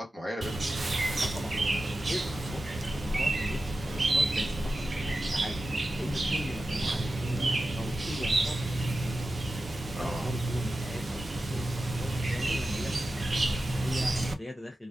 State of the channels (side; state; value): both; normal; correlation 0.93